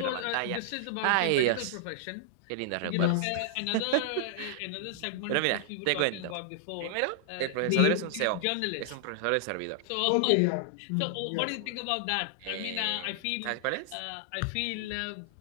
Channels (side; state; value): both; different; correlation -0.01